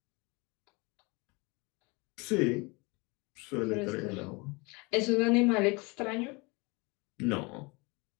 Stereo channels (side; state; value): right; quieter; 27.4 dB